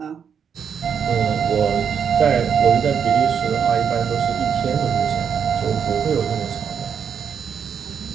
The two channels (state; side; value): quieter; left; 7.3 dB